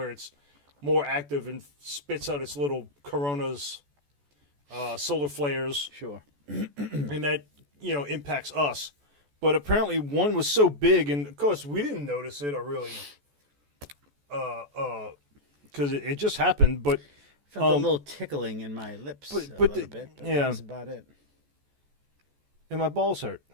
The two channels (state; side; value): late; left; 14 ms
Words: it's more active and spits out its little coronas, solar flares. Sure. And that impacts us. But apparently, one was so big, and of course we didn't notice it or really. Because it just happened, but felt a little tickling in my lips. But a little bit. Yeah, that's about it. And my balls hurt.